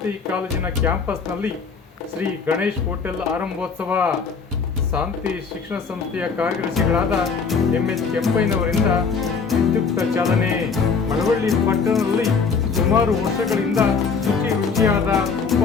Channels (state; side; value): quieter; right; 5.3 dB